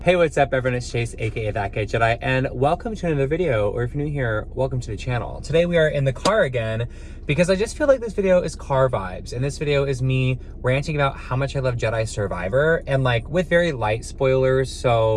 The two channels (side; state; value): both; identical; correlation 1.00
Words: Hey, what's up everyone, it's Chase, aka That Guy Jedi, and welcome to another video, or if you're new here, welcome to the channel. Today we are in the car again, because I just feel like this video is car vibes, and this video is me ranting about how much I love Jedi Survivor, and like, with very light spoilers,